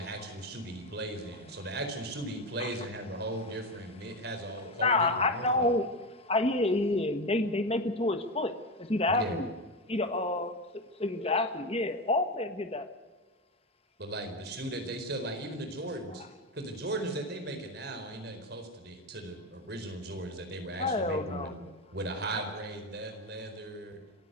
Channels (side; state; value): both; normal; correlation 0.17